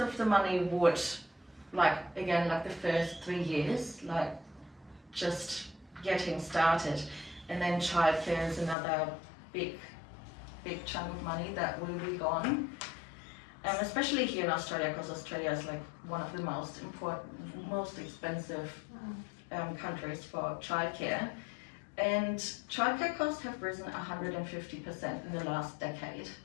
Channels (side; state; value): right; drops out; at 8.8 s